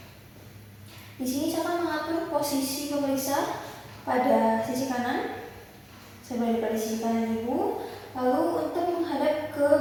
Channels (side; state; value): both; identical; correlation 1.00